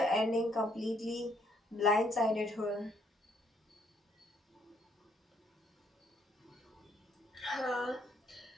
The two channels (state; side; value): normal; both; correlation 0.69